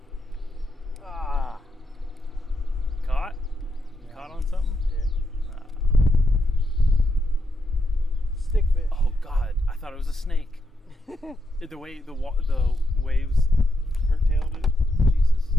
Ah. Caught? Yeah. Caught on something? Yeah. Stick fish. Oh God! I thought it was a snake. The way the waves curtailed it. Jesus.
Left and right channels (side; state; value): both; normal; correlation 0.82